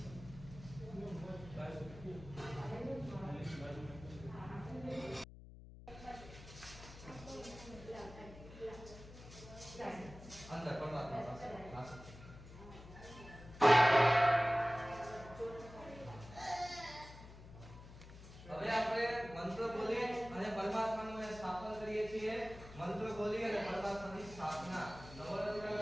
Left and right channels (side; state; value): left; noise; hum, 16 dB below the sound